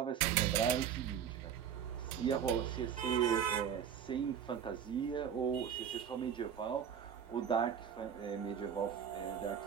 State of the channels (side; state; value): left; quieter; 8.3 dB